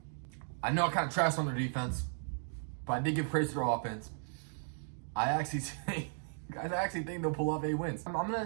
I know I kind of trashed on their defense, but I did give praise to their offense. I actually think they'll pull off 8 wins. I'm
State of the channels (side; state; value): left; silent; digital silence